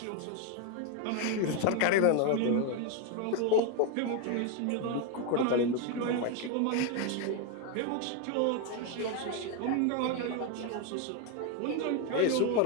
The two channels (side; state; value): both; different; correlation 0.02